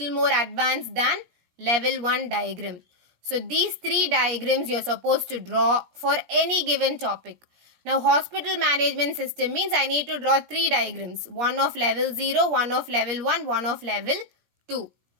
more advanced than level 1 diagram. So these 3 diagrams you are supposed to draw for any given topic. Now hospital management system means I need to draw 3 diagrams. One of level 0, one of level 1, one of level 2.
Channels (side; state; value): left; late; 17 ms